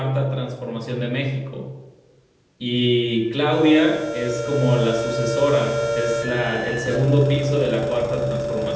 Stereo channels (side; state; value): both; identical; correlation 1.00